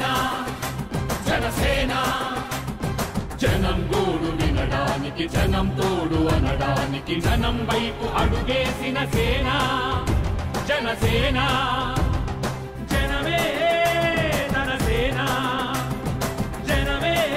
జనసేన జనం గోడు వినడానికి జనం తోడు అనడానికి జనం వైపు అడుగేసిన సేన జనసేన జనమే తన సేన జనమే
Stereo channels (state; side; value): identical; both; correlation 1.00